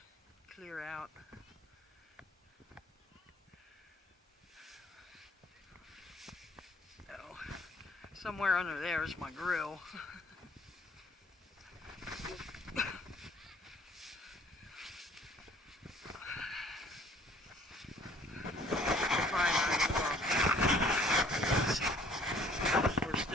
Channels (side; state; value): both; normal; correlation 0.57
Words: clear out. Oh, somewhere under there is my grill. We're